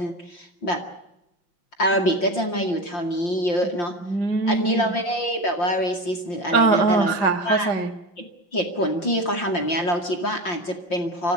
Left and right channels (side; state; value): right; late; 5.7 ms